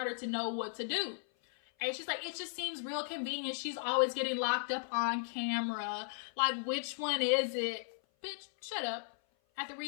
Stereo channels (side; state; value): right; silent; 54 dB below the other